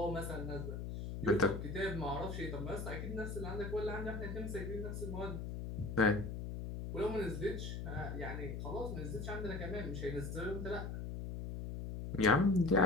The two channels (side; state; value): left; noise; hum, 5 dB below the sound